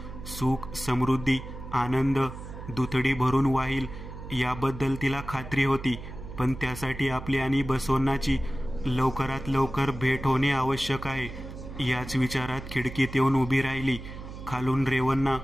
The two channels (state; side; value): noise; right; hum, 11 dB below the sound